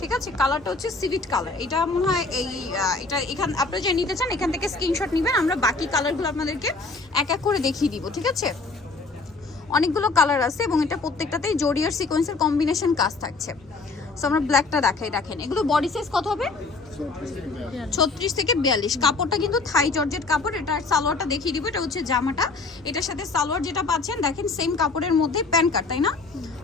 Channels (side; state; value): right; quieter; 3.8 dB